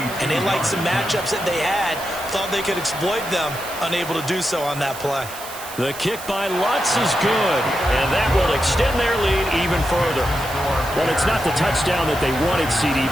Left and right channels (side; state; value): right; noise; hiss, 13 dB below the sound